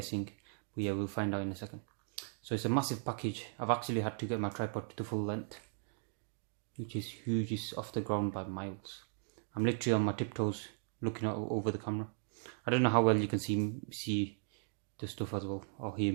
but yeah, we'll find out in a second. So it's a massive package. I've actually had to get my tripod to the full length, which is huge. It's off the ground by miles. I'm literally on my tiptoes looking out over the camera. I don't know how well you can see the stuff as well, or hear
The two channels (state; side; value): silent; left; 53 dB below the other